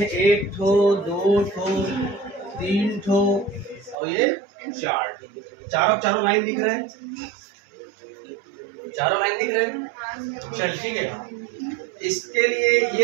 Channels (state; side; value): drops out; left; at 4.0 s